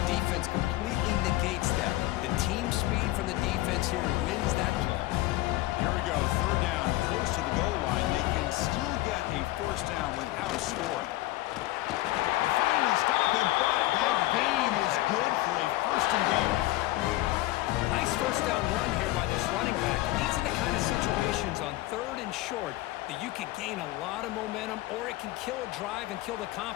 defense completely negates that. The team speed from the defense here wins that play. Here we go, 3rd down, close to the goal line. They can still get a 1st down without scoring. They finally stop him, but that gain is good for a 1st and goal. Nice 1st down run here by this running back. And these are the kind of situations on 3rd and short that you can gain a lot of momentum, or it can kill a drive and kill the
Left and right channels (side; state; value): right; quieter; 17.7 dB